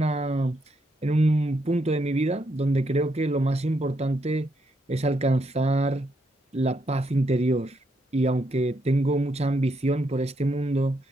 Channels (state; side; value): normal; both; correlation 0.78